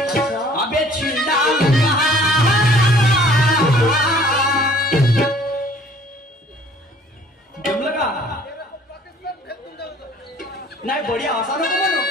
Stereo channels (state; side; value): normal; both; correlation 0.55